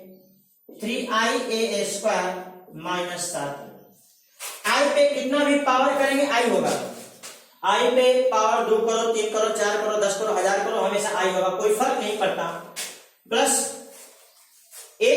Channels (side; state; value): both; identical; correlation 1.00